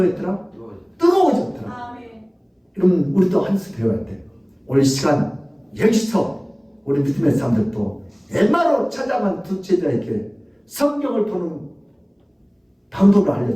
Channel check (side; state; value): both; identical; correlation 1.00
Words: 뜨거워졌더라. 그러면 우리도 한 수 배워야 돼. 오늘 시간 여기서 우리 믿음의 사람들도 엠마로 찾아간 두 제자에게 성경을 보는 방법을